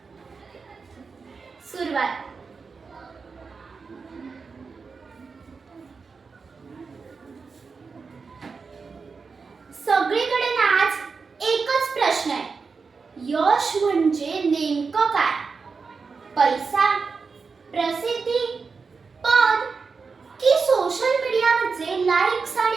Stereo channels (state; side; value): quieter; left; 4.9 dB